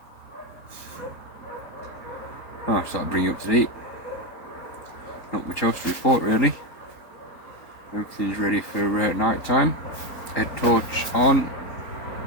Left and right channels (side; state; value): right; late; 4.0 ms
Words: Oh, so that'll bring you up to date. Not much else to report really. Everything's ready for night time. Head torch on.